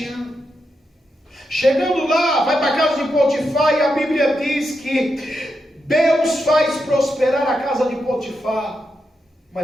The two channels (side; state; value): both; normal; correlation 0.85